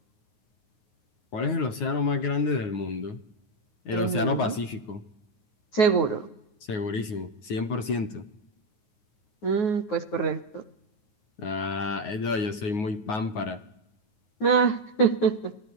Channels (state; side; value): late; right; 9.5 ms